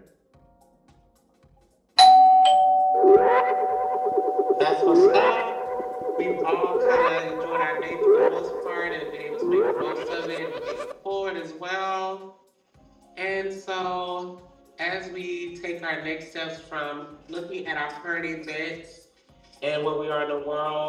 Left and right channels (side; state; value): both; identical; correlation 1.00